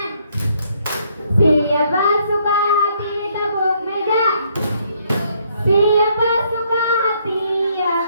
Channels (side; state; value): both; inverted; correlation -0.69